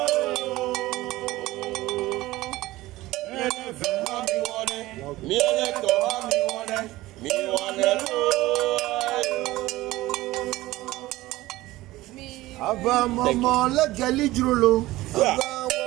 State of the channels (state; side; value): quieter; left; 17.8 dB